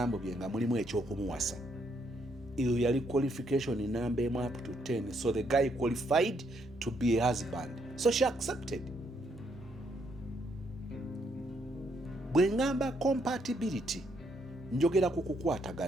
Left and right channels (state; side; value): normal; both; correlation 0.73